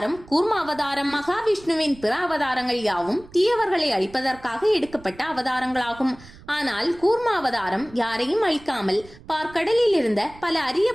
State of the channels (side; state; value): right; noise; rumble, 21 dB below the sound